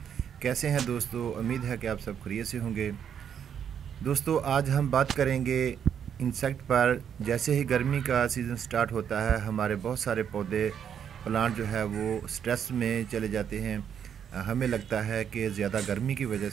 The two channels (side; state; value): left; quieter; 8.4 dB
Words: कैसे हैं दोस्तों? उम्मीद है कि आप सब खैरियत से होंगे। दोस्तों, आज हम बात करेंगे इंसेक्ट पर। जैसे ही गर्मी का सीज़न स्टार्ट होता है, हमारे बहुत सारे पौधे प्लांट जो है वो स्ट्रेस में चले जाते हैं। हमें लगता है कि ज़्यादा गर्मी की वजह